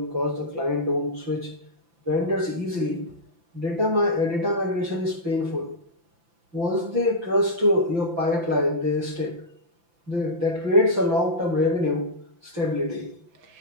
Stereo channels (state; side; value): late; left; 5.9 ms